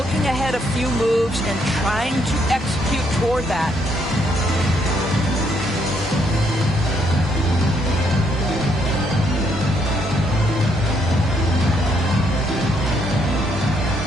ahead a few moves and trying to execute toward that.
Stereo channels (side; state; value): both; normal; correlation 0.72